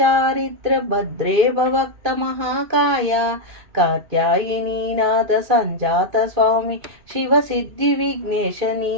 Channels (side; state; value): left; late; 2.5 ms